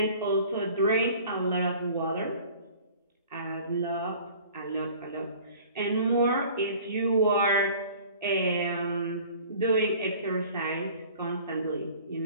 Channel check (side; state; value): both; inverted; correlation -0.47